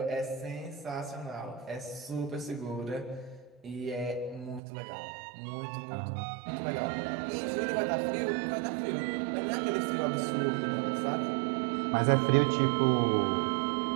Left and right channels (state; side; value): drops out; left; at 4.6 s